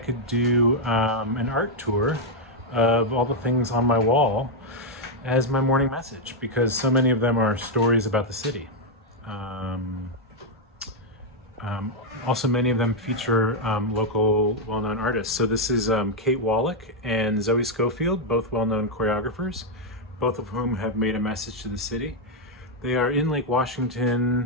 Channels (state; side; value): normal; both; correlation -0.01